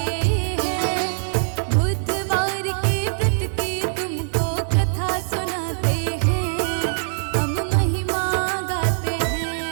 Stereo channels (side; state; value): left; silent; digital silence